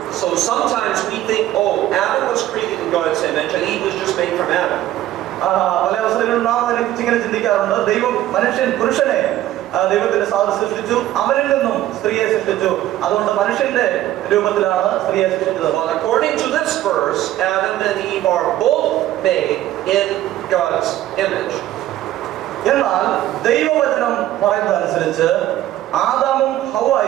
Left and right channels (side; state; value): left; quieter; 13.8 dB